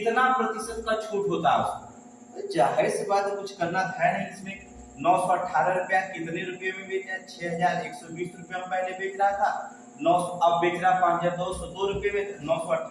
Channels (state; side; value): identical; both; correlation 1.00